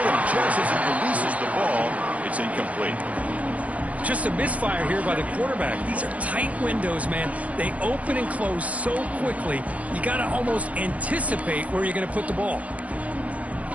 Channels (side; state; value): left; late; 0.068 ms